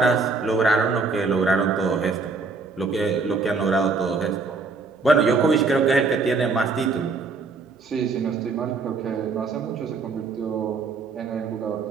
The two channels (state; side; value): quieter; left; 4.3 dB